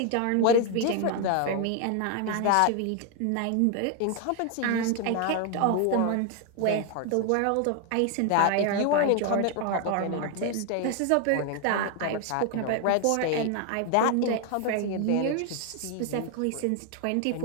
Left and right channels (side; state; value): both; different; correlation 0.01